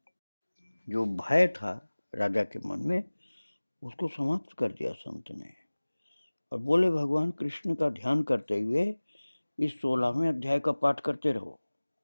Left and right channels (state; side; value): inverted; both; correlation -1.00